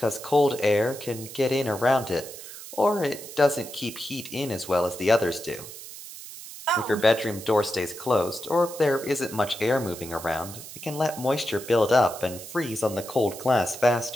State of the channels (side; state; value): right; noise; hiss, 13 dB below the sound